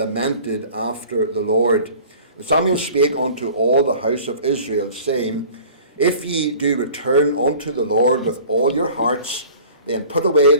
after the Lord. And Samuel spake unto all the house of Israel, saying, If ye do return unto the Lord with all your hearts, then put away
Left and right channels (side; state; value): both; inverted; correlation -0.45